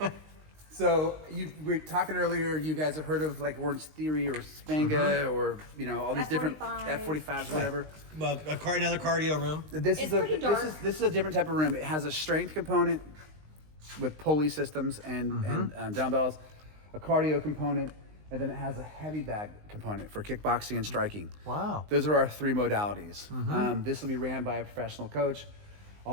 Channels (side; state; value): left; late; 19 ms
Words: So we were talking earlier. You guys have heard of like Orange Theory or Spanga or all these different F45s. F45s, whatever. Another cardio room. This It's is a pretty dark. This is a different type of room. It has a strength component with pulley systems and dumbbells, a cardio component, and then it has a heavy bag component for kickboxing and striking. Wow. Those are our 3 modalities. This will be ran by a professional coach.